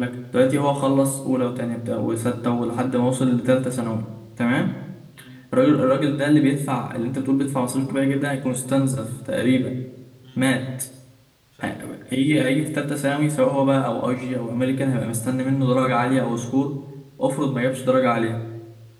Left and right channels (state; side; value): identical; both; correlation 1.00